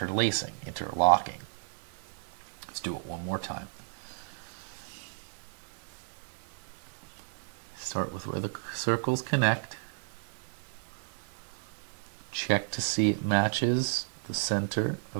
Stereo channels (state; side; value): silent; left; 56 dB below the other